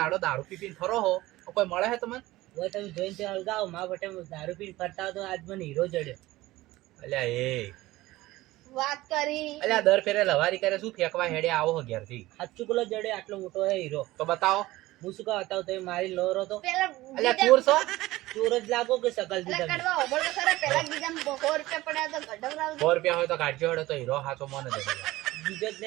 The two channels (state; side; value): quieter; left; 17.9 dB